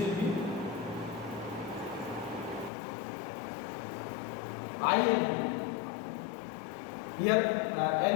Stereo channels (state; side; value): drops out; right; at 2.7 s